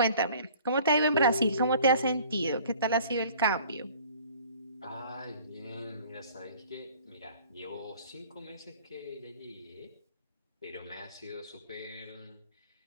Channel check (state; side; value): inverted; both; correlation -0.50